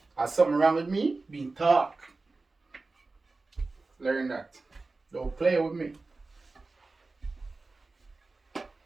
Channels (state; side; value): quieter; left; 3.6 dB